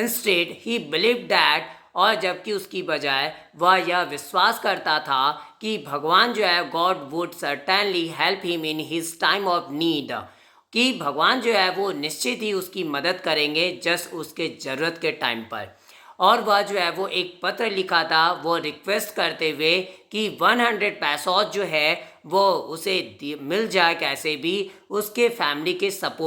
ही बिलीव दैट, और जबकि उसकी बजाय वह यह विश्वास करता था कि भगवान जो है God would certainly help him in his time of need, कि भगवान जो है वो निश्चित ही उसकी मदद करेंगे जस्ट उसके ज़रूरत के टाइम पर। और वह जो है वो एक पत्र लिखा था वो रिक्वेस्ट करते हुए कि 100 पैसों जो है वो उसे मिल जाए कैसे भी उसके फैमिली के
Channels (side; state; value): both; identical; correlation 1.00